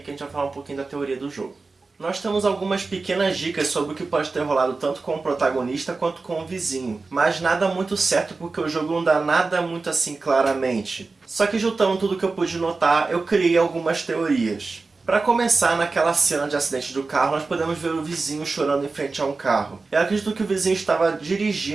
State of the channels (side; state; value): left; quieter; 3.9 dB